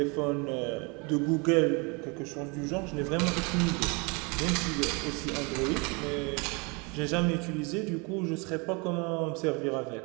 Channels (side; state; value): left; quieter; 30.4 dB